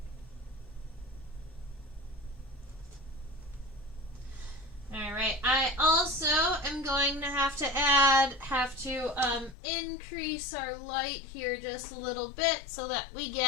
Alright, I also am going to have to increase our light here just a little bit so that we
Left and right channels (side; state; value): right; drops out; at 9.6 s